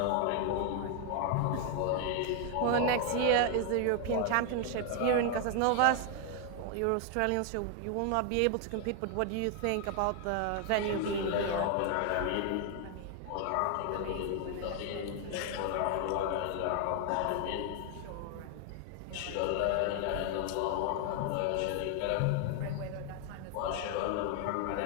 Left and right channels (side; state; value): both; different; correlation 0.00